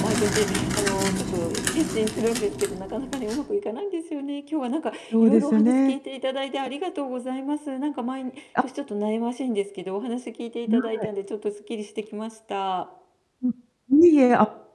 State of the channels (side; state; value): both; identical; correlation 1.00